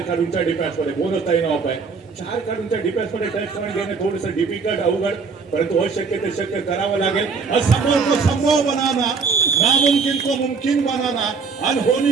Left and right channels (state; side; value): quieter; left; 5.0 dB